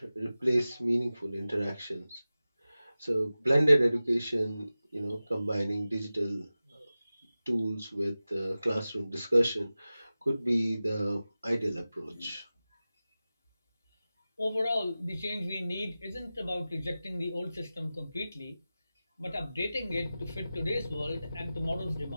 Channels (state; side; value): inverted; both; correlation -0.96